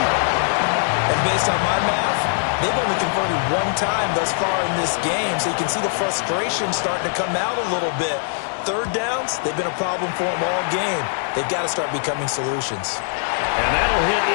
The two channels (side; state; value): right; silent; digital silence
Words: And based on my math, they've only converted one time thus far in this game, so you can see the frustration starting to come out a little bit. 3rd downs, they've been a problem for them all game. They've got to start becoming solutions. And that'll hit